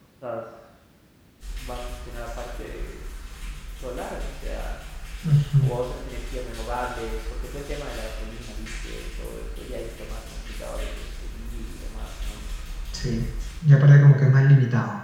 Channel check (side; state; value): both; identical; correlation 1.00